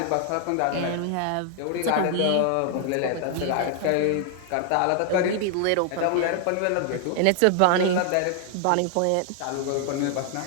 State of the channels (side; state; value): both; different; correlation 0.00